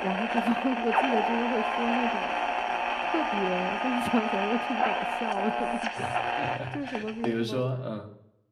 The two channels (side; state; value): both; identical; correlation 1.00